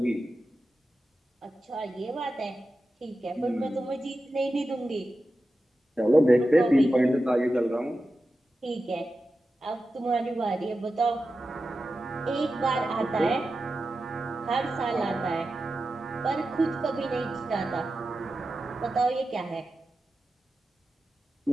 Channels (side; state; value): both; normal; correlation 0.92